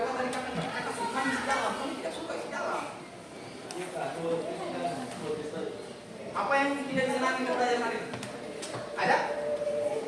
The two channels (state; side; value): identical; both; correlation 1.00